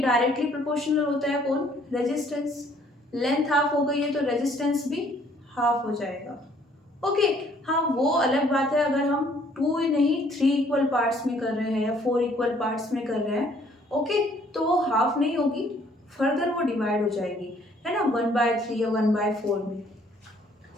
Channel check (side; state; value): both; normal; correlation 0.62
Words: प्रोपोर्शनल होता है कौन, रेजिस्टेंस, लेंथ हाफ हो गई है तो रेजिस्टेंस भी हाफ हो जाएगा। ओके, हाँ वो अलग बात है अगर हम 2 नहीं 3 इक्वल पार्ट्स में कर रहे हैं या 4 इक्वल पार्ट्स में कर रहे हैं, ओके, तो वो हाफ नहीं होगी, फर्दर वो डिवाइड हो जाएगी, है ना, 1/3 या 1/4 में।